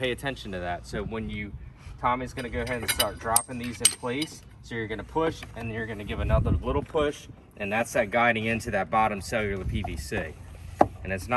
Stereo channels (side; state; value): both; identical; correlation 1.00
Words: attention to that. So when Tommy's going to go ahead and start dropping these in place, so you're going to push, and then you're going to give another little push, and that's that guiding into that bottom cellular PVC. And it's